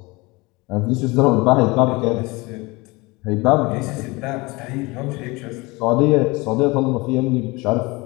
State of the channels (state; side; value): quieter; right; 24.3 dB